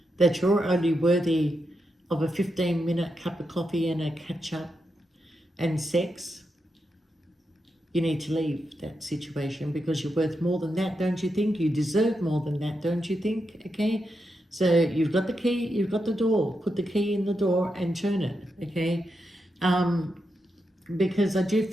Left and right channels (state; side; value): normal; both; correlation 0.85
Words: that you're only worthy of a 15-minute cup of coffee and a catch-up and sex, you need to leave that situation because you're worth more than that, don't you think? You deserve more than that, don't you think? Okay? So you've got the key, you've got the door. Put the key in the door and turn it, okay? Because I do